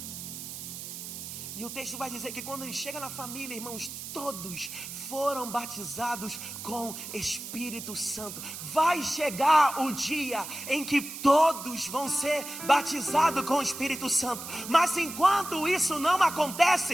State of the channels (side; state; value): right; noise; hiss, 9 dB below the sound